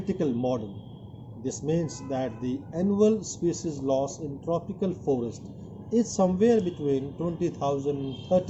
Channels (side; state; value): both; identical; correlation 1.00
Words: model, this means that the annual species loss in tropical forest is somewhere between 20,000 and